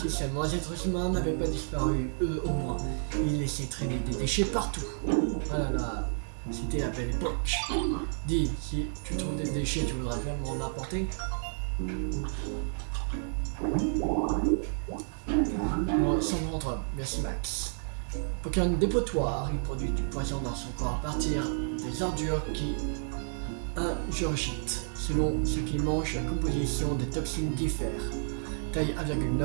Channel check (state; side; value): silent; left; digital silence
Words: seulement les êtres humains n'avaient pas disparu, eux au moins, ils laissaient traîner des déchets partout. Ah là là, c'était la belle époque. Dis, si tu trouves des déchets, tu voudrais bien m'en apporter? Bon, sans rentre, merci Max. Pokémon dépotoir, il produit du poison dans son corps à partir des ordures qui ingurgite. Selon ce qu'il mange, la composition des toxines diffère. Taille